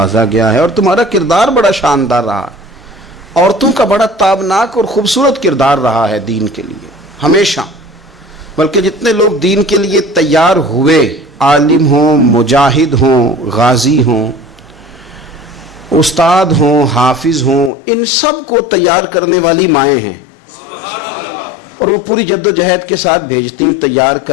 گیا ہے، اور تمہارا کردار بڑا شاندار رہا ہے، عورتوں کا بڑا تابناک اور خوبصورت کردار رہا ہے دین کے لیے ہمیشہ۔ بلکہ جتنے لوگ دین کے لیے تیار ہوئے، عالم ہوں، مجاہد ہوں، غازی ہوں، استاد ہوں، حافظ ہوں، ان سب کو تیار کرنے والی مائیں ہیں، اور وہ پوری جد و جہد کے ساتھ بھیجتی، تیار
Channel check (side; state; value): right; drops out; at 17.7 s